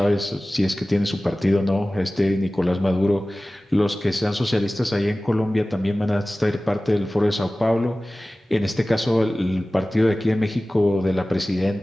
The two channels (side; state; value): both; normal; correlation 0.97